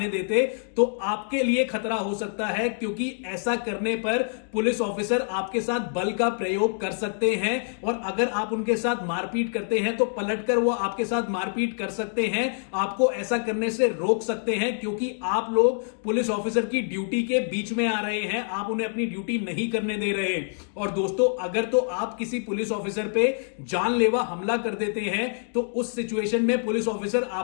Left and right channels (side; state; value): right; silent; 61 dB below the other